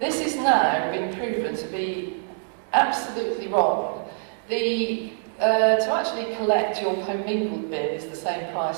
is now being proven to be absolutely wrong. To actually collect your commingled bin is the same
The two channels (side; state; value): left; silent; digital silence